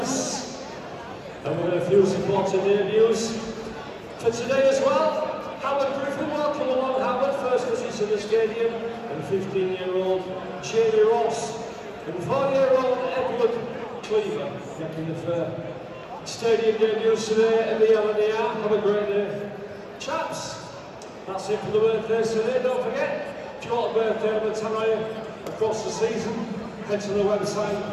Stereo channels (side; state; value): both; identical; correlation 1.00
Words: And we've got a few supporting debuts for today as well. Howard Griffin, welcome along Howard, first visit to the stadium, and 15-year-old Jamie Ross, and 4-year-old Edward Cleaver, making the stadium debuts today at the LNER. Have a great day, chaps. That's it for the birthdays today. Don't forget, if you want a birthday on the Tannoy across the season, head to the website